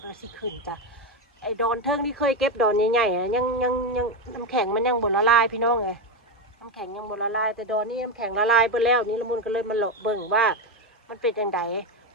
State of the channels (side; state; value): both; normal; correlation 0.11